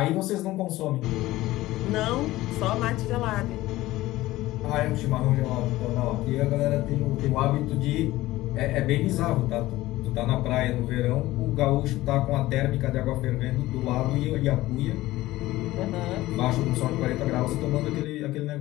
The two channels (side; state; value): right; quieter; 17.1 dB